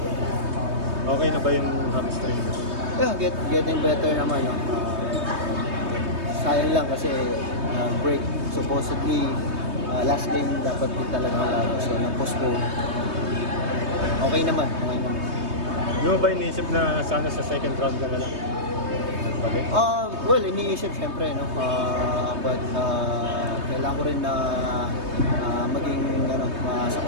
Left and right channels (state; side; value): late; left; 3.2 ms